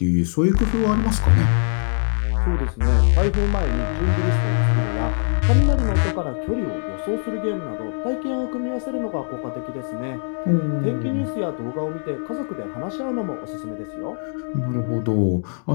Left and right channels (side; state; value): right; silent; digital silence